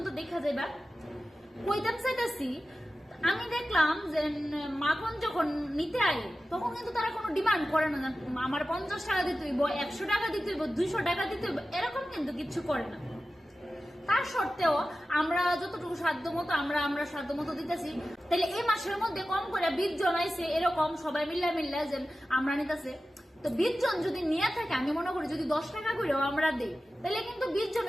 দেখা যাবে। কইতাম চাইতাছি, আমি দেখলাম যে মাখন যখন নিতে আয় তখন কিন্তু তারা কোনো ডিমান্ড করে না, আমার 50 টাকা দিতে হইব, 100 টাকা দিতে হইব, 200 টাকা দিতে হইব, এরকম কিন্তু কিছু করে না। তার সত্ত্বেও আমরা যতটুকু সাধ্য মতো আমরা সাধ্য মতো দিতেছি। তাহলে এই মাসের মধ্যে কম করে 20 জন আইছে, এরকম সবাই মিল্লা যে আমরা নিতেছে। তো 20 জন যদি নিয়ে থাকে, আমি মনে করি যদি 10 টাকা করেও আমরা দিই, তাহলে কিন্তু 20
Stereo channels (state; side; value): normal; both; correlation 0.94